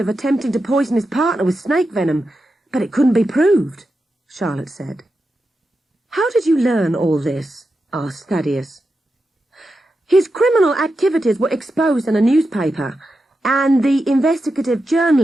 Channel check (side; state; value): both; normal; correlation 0.89